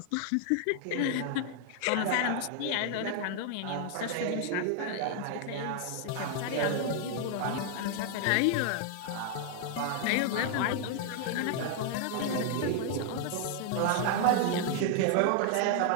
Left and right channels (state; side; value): different; both; correlation 0.00